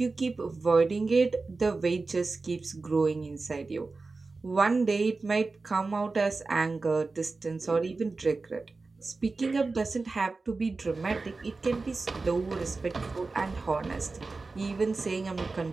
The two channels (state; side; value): quieter; left; 3.8 dB